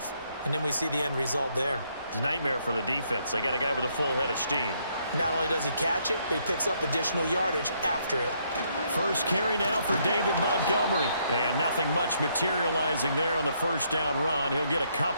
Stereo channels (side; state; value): both; inverted; correlation -0.72